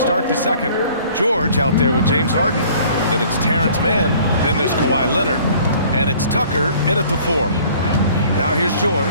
the second. George out there with James Harden. Then it's Terrence Mann. Then there's Kawhi Leonard. And it's Tucker in at the 4. Now here's George.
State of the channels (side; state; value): both; inverted; correlation -0.53